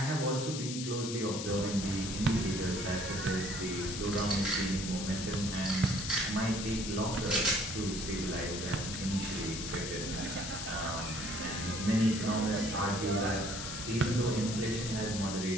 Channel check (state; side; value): noise; left; hiss, 6 dB below the sound